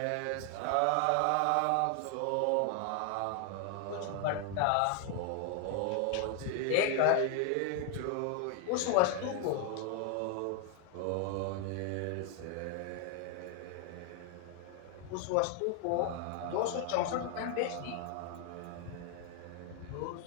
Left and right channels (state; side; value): different; both; correlation 0.00